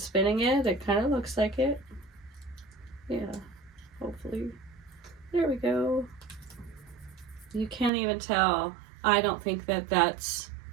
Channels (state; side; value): drops out; left; at 7.9 s